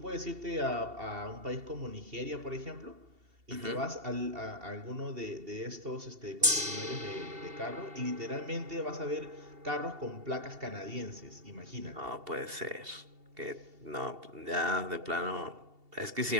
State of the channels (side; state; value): left; late; 2.7 ms